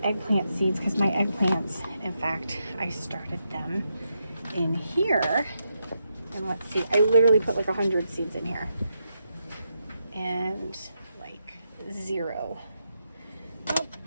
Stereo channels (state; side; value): inverted; both; correlation -0.84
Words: eggplant seeds because my eggplants, in fact, I started them in here, and let's see, I literally put like 100 seeds in here and like 0.